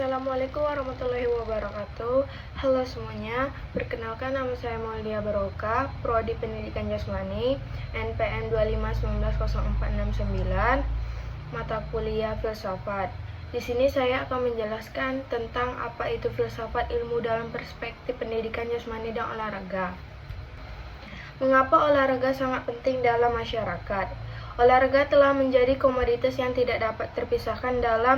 warahmatullahi wabarakatuh. Halo semuanya, perkenalkan nama saya Maulia Baroka, Prodi Pendidikan Jasmani, NPM 251904669, mata kuliah Filsafat. Di sini saya akan menjelaskan tentang apa itu filsafat ilmu dalam perspektif pendidikan jasmani dan olahraga. Mengapa olahraga sangat penting dalam masyarakat? Olahraga telah menjadi komoditas yang tidak dapat terpisahkan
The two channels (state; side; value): identical; both; correlation 1.00